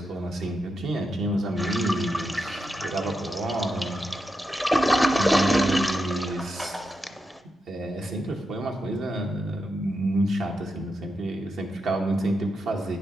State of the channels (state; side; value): normal; both; correlation 0.86